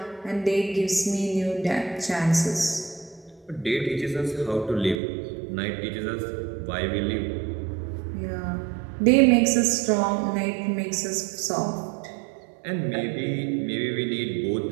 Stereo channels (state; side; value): drops out; left; at 5.0 s